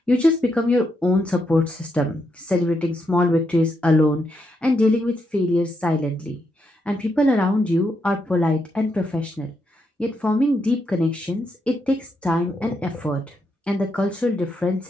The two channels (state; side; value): normal; both; correlation 0.81